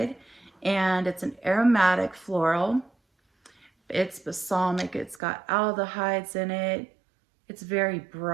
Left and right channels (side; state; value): left; drops out; at 5.2 s